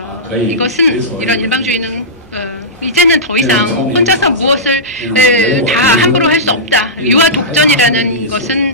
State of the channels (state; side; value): normal; both; correlation -0.16